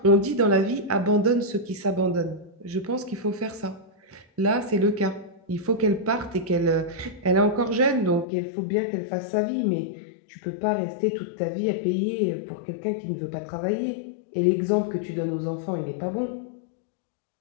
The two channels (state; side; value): drops out; right; at 8.2 s